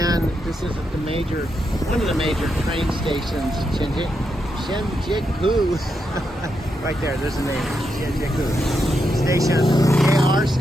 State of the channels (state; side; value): normal; both; correlation 0.83